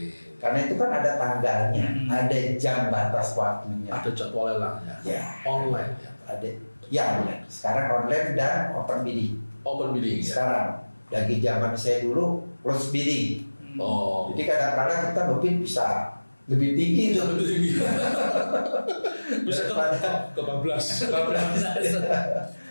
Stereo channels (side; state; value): both; inverted; correlation -1.00